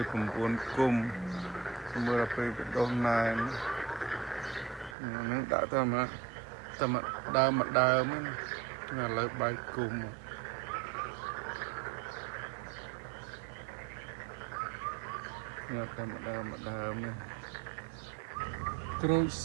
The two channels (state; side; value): drops out; left; at 5.0 s